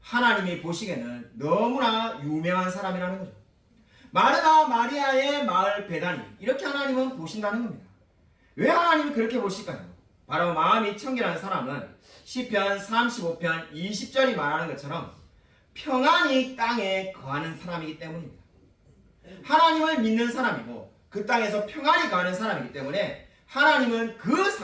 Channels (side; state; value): both; identical; correlation 1.00